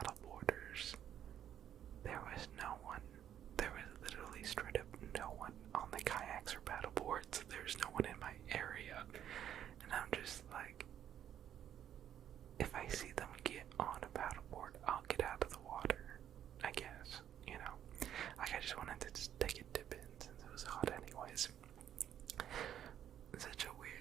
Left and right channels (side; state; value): left; quieter; 10.3 dB